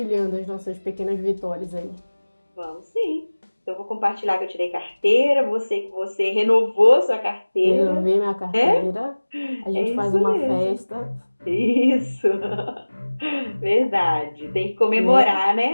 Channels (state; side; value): inverted; both; correlation -1.00